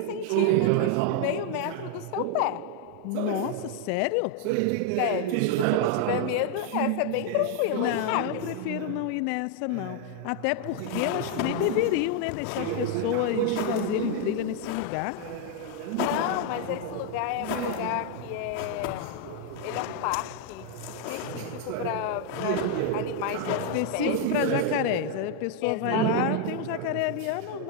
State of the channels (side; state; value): both; different; correlation 0.00